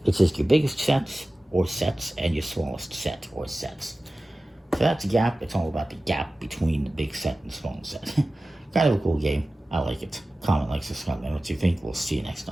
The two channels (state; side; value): normal; both; correlation 0.96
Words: It's just your biggest sets or sets and your smallest set or sets. So that's Gap. It's all about the gap between the big set and small set. Kind of a cool game. I like it. Comment, like, subscribe, and what you think. We'll see you next